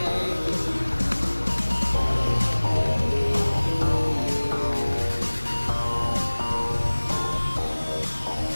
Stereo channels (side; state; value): both; inverted; correlation -1.00